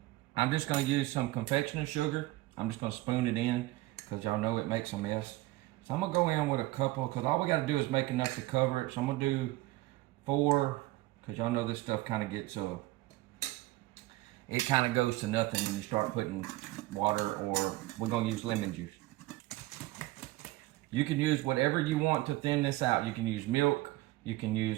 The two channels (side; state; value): left; quieter; 18.5 dB